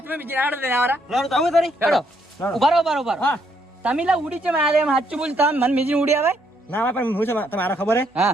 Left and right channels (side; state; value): both; normal; correlation 0.72